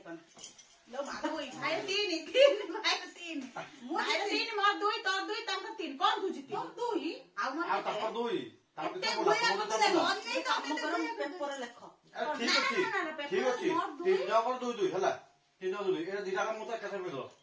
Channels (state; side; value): identical; both; correlation 1.00